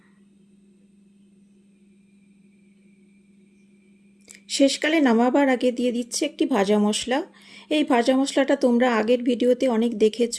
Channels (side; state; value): both; identical; correlation 1.00